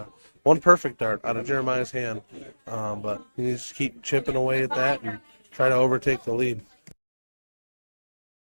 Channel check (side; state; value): both; inverted; correlation -1.00